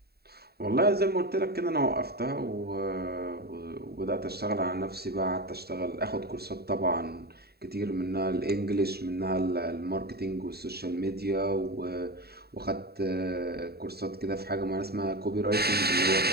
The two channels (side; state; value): left; late; 0.46 ms